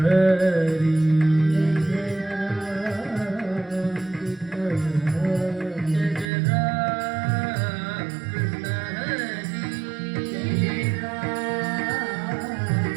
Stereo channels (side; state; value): left; drops out; at 6.3 s